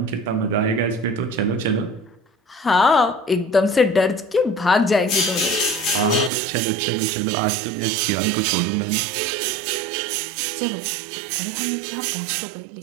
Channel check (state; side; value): drops out; left; at 6.3 s